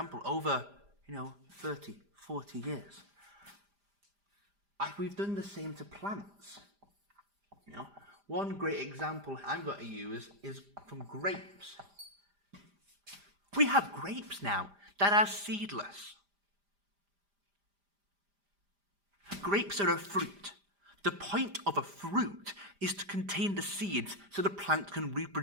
over, 30, 40 years. We've done the same to plants. One great example I'm going to use is from grapes. We have grapes now that are seedless. Grapes are a fruit. The point of a fruit is to contain the seeds so the plant can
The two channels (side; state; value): left; late; 5.0 ms